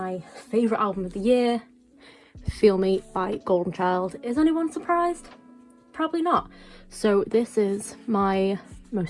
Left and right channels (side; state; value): both; identical; correlation 1.00